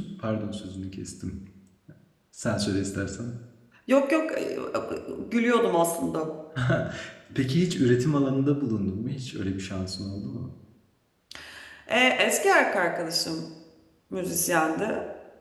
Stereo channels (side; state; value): both; identical; correlation 1.00